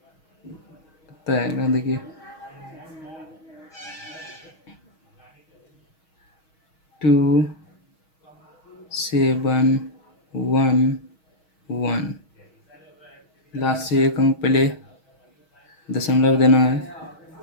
कितना आएगा? देखिए, 2711। लास्ट से एक अंक पहले दशमलव देना है।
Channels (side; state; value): right; late; 6.3 ms